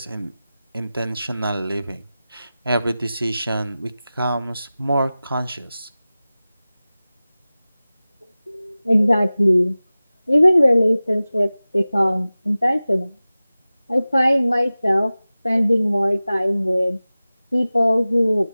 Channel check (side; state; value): both; inverted; correlation -0.97